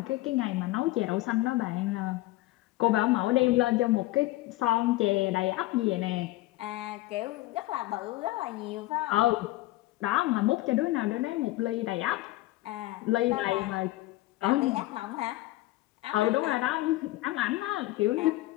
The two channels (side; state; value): right; quieter; 18.3 dB